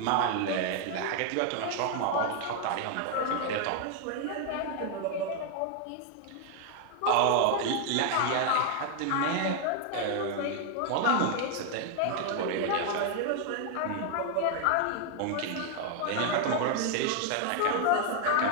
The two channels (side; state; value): both; different; correlation 0.00